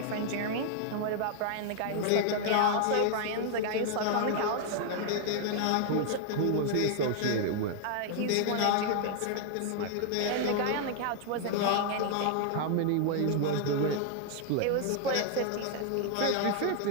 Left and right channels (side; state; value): both; different; correlation 0.00